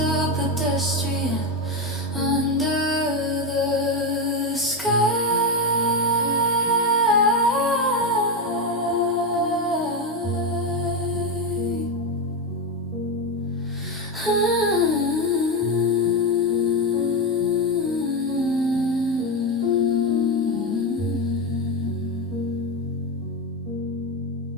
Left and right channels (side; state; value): both; normal; correlation 0.11